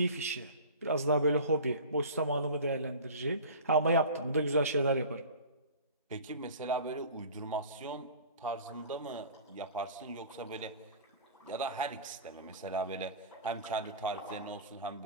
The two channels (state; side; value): inverted; both; correlation -0.39